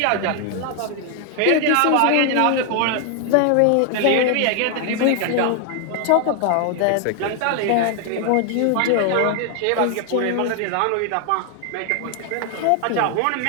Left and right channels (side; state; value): both; different; correlation 0.00